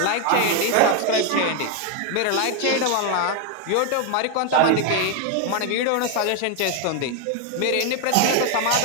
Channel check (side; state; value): both; different; correlation 0.01